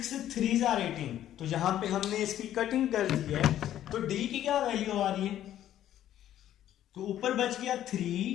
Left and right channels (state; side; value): quieter; right; 11.9 dB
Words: 3 * 18। तो यहां पे हमने इसकी कटिंग कर दी है। तो D की क्या वैल्यू आ रही है, तो ऊपर बच गया